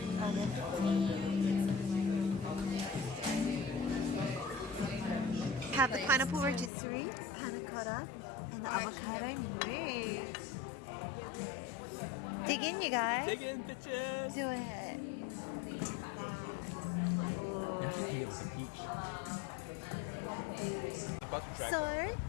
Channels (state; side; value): drops out; right; at 6.7 s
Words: Have the pineapple rotisserie, panna cotta, and the avocado mousse. Dig in, you guys. Dig in, bitches. Do it. Look at that. Ooh. So,